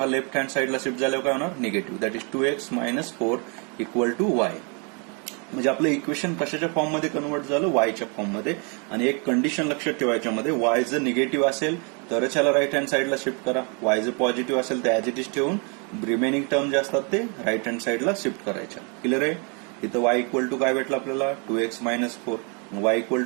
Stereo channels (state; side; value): quieter; left; 35.0 dB